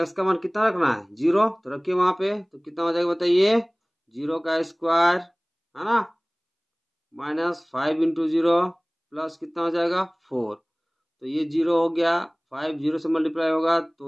का मान कितना रखना है 0, तो रखिए वहां पे, तो कितना हो जाएगा बताइए 0 का स्क्वायर है ना -5 इंटू 0 प्लस कितना हो जाएगा 4, तो ये 0 हो गया, 5 0 से मल्टीप्लाई होगा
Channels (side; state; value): both; identical; correlation 1.00